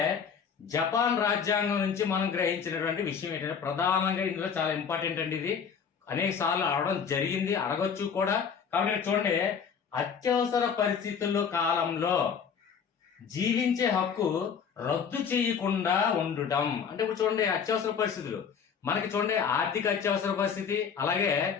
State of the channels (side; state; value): right; quieter; 6.8 dB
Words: జపాన్ రాజ్యాంగం నుంచి మనం గ్రహించినటువంటి విషయం ఏంటంటే, ప్రధానంగా ఇందులో చాలా ఇంపార్టెంట్ అండి. ఇది అనేక సార్లు అడగడం జరిగింది, అడగొచ్చు కూడా. కాబట్టి చూడండి, అత్యవసర పరిస్థితుల్లో కాలంలో జీవించే హక్కు రద్దు చేయకుండా ఉండటం. అంటే ఇప్పుడు చూడండి, అత్యవసర పరిస్థితులు మనకి చూడండి, ఆర్థిక అత్యవసర పరిస్థితి, అలాగే